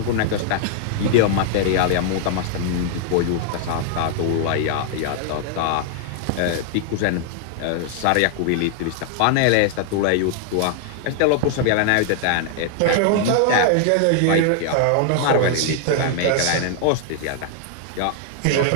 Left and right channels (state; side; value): different; both; correlation 0.00